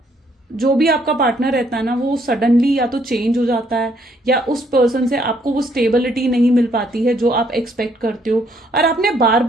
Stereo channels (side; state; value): both; normal; correlation 0.68